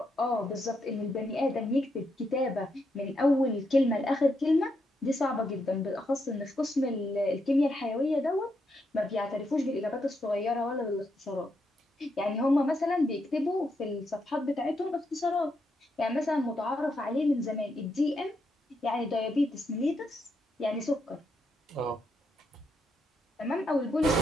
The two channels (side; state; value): both; normal; correlation 0.80